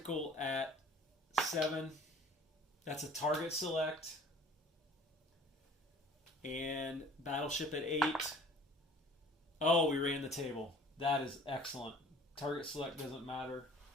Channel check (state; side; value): normal; both; correlation 0.50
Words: at 7. That's a target select. And battleship at 8. Oh, we ran the table. That is excellent. Target select doesn't matter.